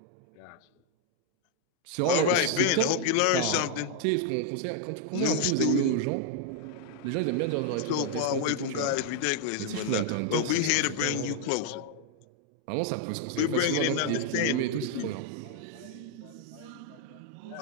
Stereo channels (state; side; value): different; both; correlation 0.00